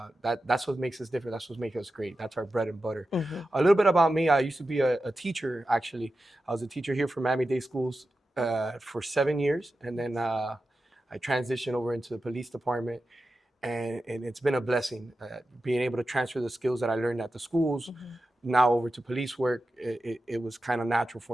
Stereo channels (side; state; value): both; normal; correlation 0.92